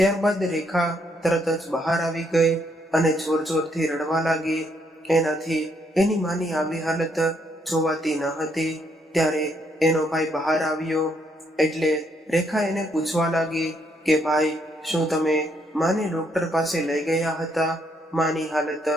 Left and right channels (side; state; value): both; normal; correlation 0.73